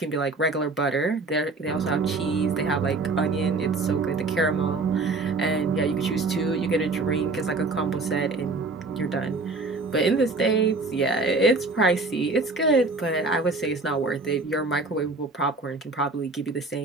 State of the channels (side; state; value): left; quieter; 3.6 dB